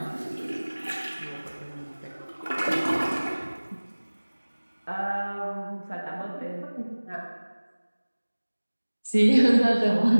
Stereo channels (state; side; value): inverted; both; correlation -1.00